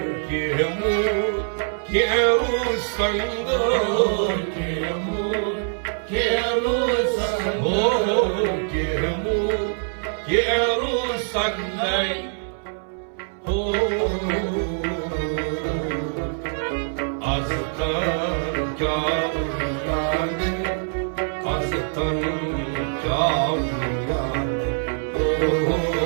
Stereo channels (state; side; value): silent; left; 63 dB below the other